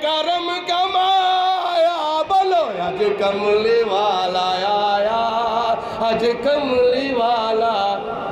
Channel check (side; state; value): both; identical; correlation 1.00